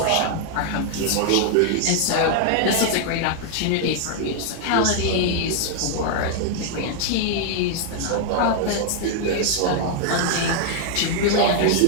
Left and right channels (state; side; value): different; both; correlation 0.00